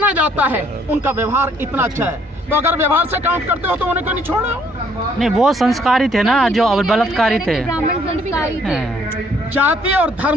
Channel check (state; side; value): normal; both; correlation 0.65